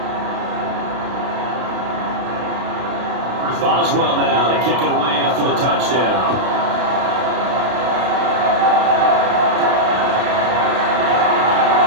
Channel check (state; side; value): late; left; 32 ms